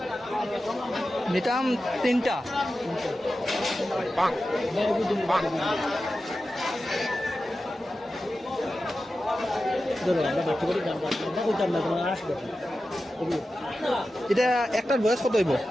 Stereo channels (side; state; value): both; normal; correlation 0.93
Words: নিতাম তিনটা ধরো আমরা বাচ্চা করে দাম না কইতাম না তোমার আসবে এটা একটার বয়স কত হইব